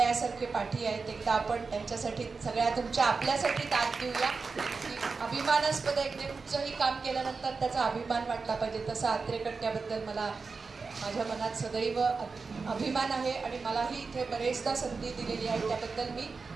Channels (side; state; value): left; quieter; 4.5 dB